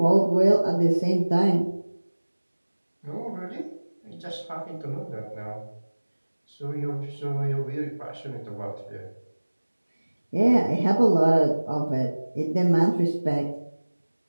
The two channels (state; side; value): inverted; both; correlation -1.00